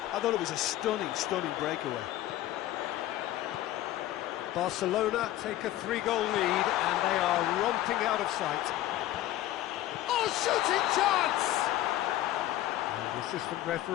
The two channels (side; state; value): right; quieter; 14.5 dB